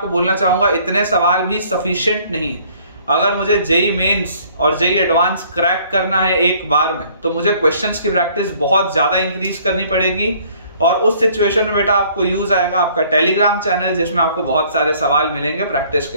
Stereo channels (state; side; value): inverted; both; correlation -0.58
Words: बोलना चाहूंगा इतने सवाल भी सफिशिएंट नहीं है। अगर मुझे जेई मेंस और जेई एडवांस क्रैक करना है एक बार में तो मुझे क्वेश्चंस की प्रैक्टिस बहुत ज्यादा इंक्रीज करनी पड़ेगी। और उस सिचुएशन में बेटा आपको यूज आएगा आपका टेलीग्राम चैनल, जिसमें आपको बहुत सारे सवाल मिलेंगे प्रैक्टिस